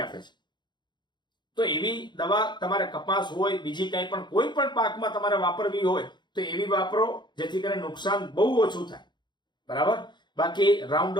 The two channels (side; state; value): right; late; 0.22 ms